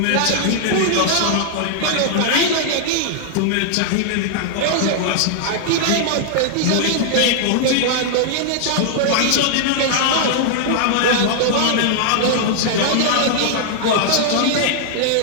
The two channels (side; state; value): both; different; correlation -0.01